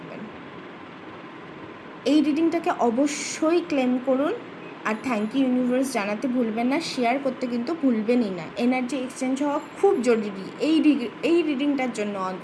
এই রিডিংটাকে অবশ্যই ক্লেম করুন, আর থ্যাংক ইউ ইউনিভার্স জানাতে ভুলবেন না, শেয়ার করতে কিন্তু ভুলবেনই না। এনার্জি এক্সচেঞ্জ হওয়া খুব জরুরি এই রিডিংটার জন্য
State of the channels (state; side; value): identical; both; correlation 1.00